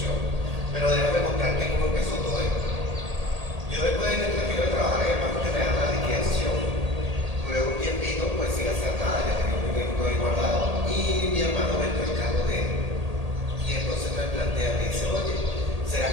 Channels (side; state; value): left; late; 1.8 ms